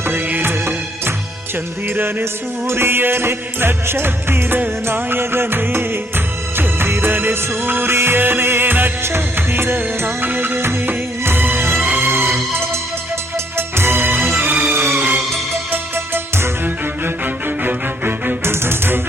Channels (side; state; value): both; normal; correlation 0.68